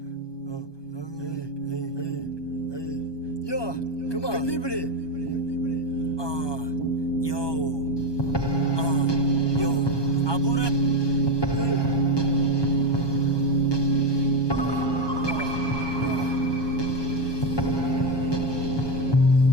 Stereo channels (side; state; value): right; late; 1.2 ms